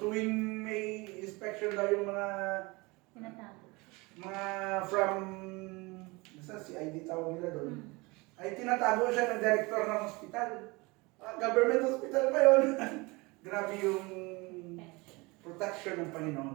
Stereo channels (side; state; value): left; quieter; 24.9 dB